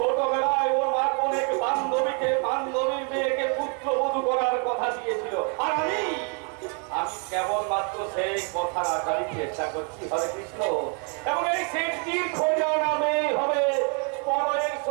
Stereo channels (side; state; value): left; quieter; 39.2 dB